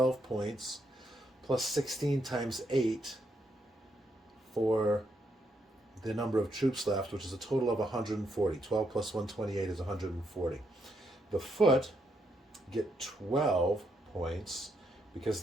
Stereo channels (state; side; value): normal; both; correlation 0.78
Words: points, plus 16 times 8 for the number of troops left, which is a total of 140. 12 plus 128 is 140. The foot get 12 points because